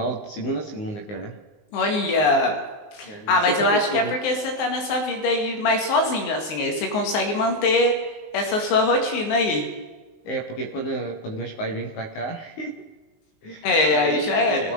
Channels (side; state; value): right; late; 19 ms